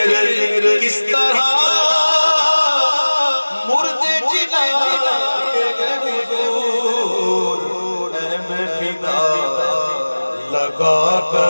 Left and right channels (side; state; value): both; inverted; correlation -1.00